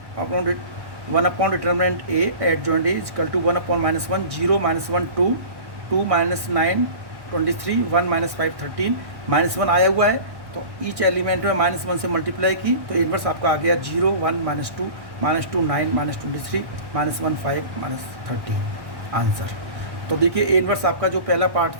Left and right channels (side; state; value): left; late; 1.1 ms